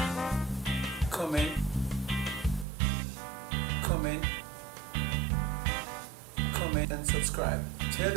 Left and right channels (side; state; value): left; drops out; at 2.7 s